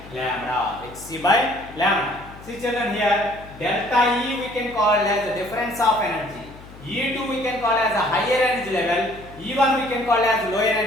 lambda, hc by lambda. See children, here delta E we can call as the difference of energy, E2 we can call as a higher energy level, E1 we can call as lower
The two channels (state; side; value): noise; left; hum, 18 dB below the sound